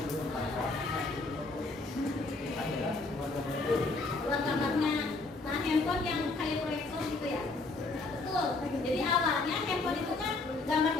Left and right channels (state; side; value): quieter; right; 3.4 dB